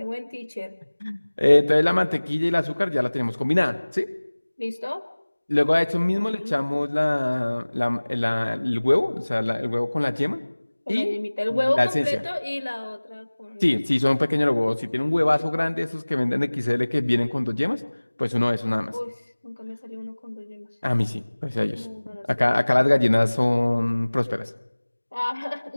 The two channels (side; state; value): both; inverted; correlation -1.00